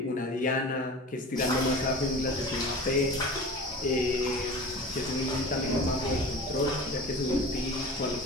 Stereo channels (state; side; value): normal; both; correlation 0.36